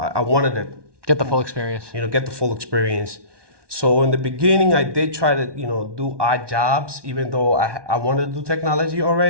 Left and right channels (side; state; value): left; late; 1.2 ms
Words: wanted to get the full experience. Get the full experience. So in the beginning, I did try to do odd jobs, even though I wanted to do technology